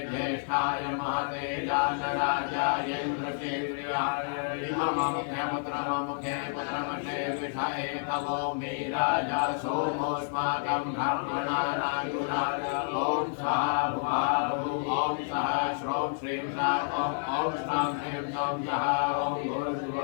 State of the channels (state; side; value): silent; right; 58 dB below the other